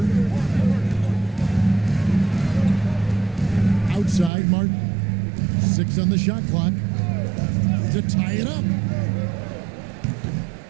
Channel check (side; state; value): left; drops out; at 4.3 s